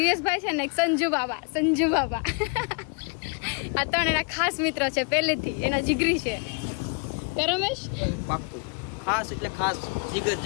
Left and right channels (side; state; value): right; quieter; 35.7 dB